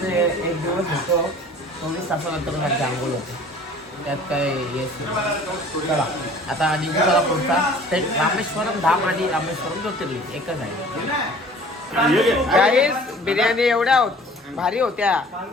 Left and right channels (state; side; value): normal; both; correlation 0.49